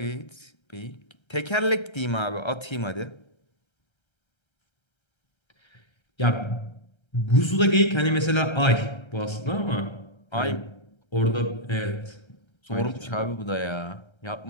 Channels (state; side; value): late; right; 1.3 ms